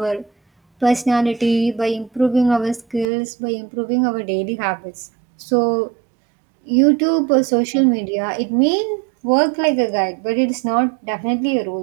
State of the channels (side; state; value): left; drops out; at 3.1 s